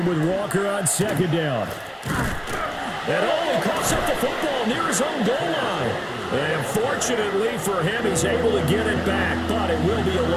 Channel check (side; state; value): both; identical; correlation 1.00